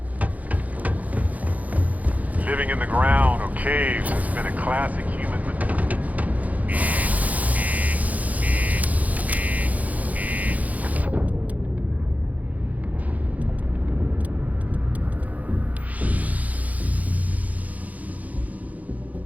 Living in the ground or caves has been a classic human.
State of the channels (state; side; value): late; left; 0.075 ms